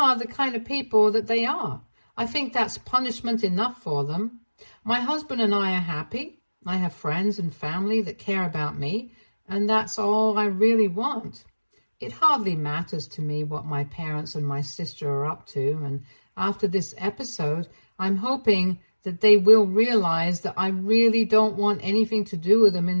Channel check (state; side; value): inverted; both; correlation -1.00